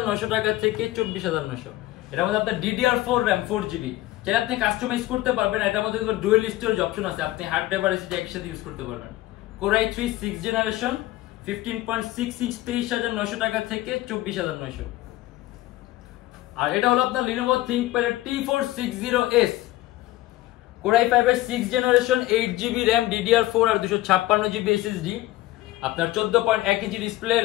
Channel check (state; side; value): quieter; right; 16.7 dB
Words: টাকা থেকে 24,900। এটার মধ্যে আপনার DDR4 র্যাম 4GB, যেটা আপনি কাস্টমাইজ করতে পারবেন। এটার মধ্যে ডুয়াল স্টোরেজ অপশন আছে, আপনি হার্ড ড্রাইভ আর এসএসডি একসাথে ইউজ করতে পারবেন। কোর i3 6 জেনারেশন 15.6 ইঞ্চ 23,900 টাকা থেকে 24,900। আর এটা হলো আপনার Lenovo ThinkPad T460S core i5 এর 6 জেনারেশন 8GB র্যাম DDR4 আর 256GB SSD। আপনার 14.1 ইঞ্চি ডিসপ্লে,